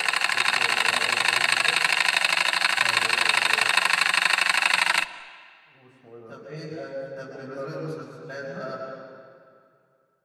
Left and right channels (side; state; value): both; identical; correlation 1.00